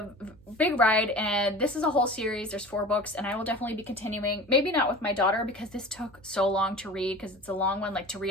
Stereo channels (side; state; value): right; noise; hum, 26 dB below the sound